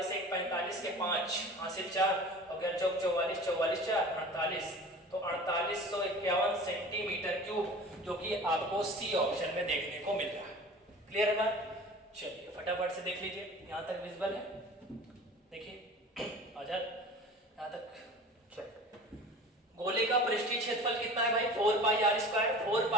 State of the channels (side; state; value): both; normal; correlation 0.40